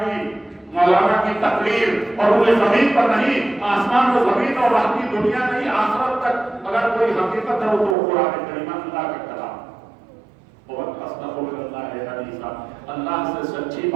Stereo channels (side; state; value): left; drops out; at 8.0 s